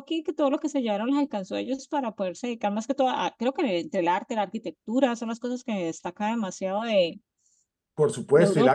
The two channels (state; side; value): identical; both; correlation 1.00